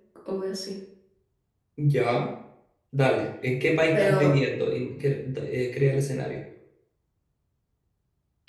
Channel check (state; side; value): identical; both; correlation 1.00